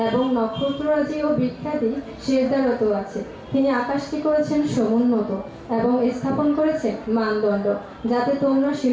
এবং নক্ষত্ররাজি ও বৃক্ষাদি সেজদারত আছে। তিনি আকাশকে করেছেন সমুন্নত এবং স্থাপন করেছেন মানদণ্ড, যাতে তোমরা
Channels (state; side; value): identical; both; correlation 1.00